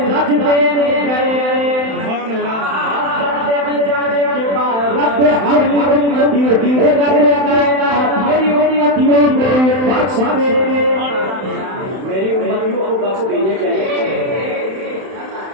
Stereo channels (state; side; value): late; left; 31 ms